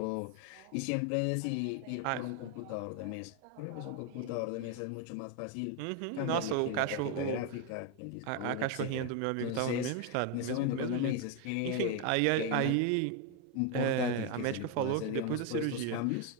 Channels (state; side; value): different; both; correlation 0.01